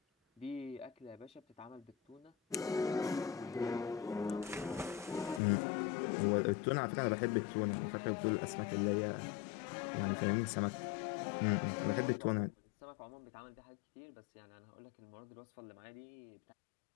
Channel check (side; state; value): right; drops out; at 5.4 s